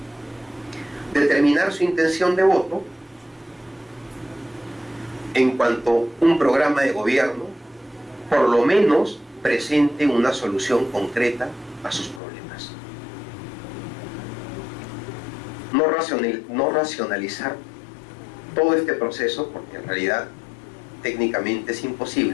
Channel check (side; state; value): right; drops out; at 12.2 s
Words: determinar su intención de voto en cuanto un programa de gobierno por lo menos presente una solución concreta a sus problemas. No racionalizar todo este proceso, porque en realidad técnicamente es